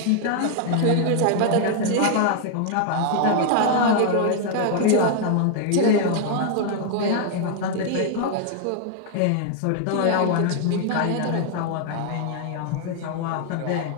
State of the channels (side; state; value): both; different; correlation 0.00